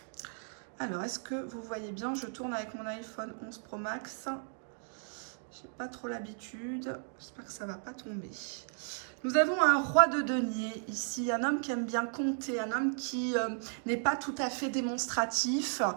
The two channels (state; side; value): silent; left; 55 dB below the other